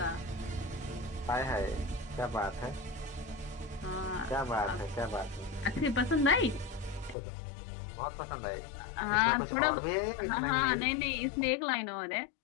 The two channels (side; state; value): right; drops out; at 7.2 s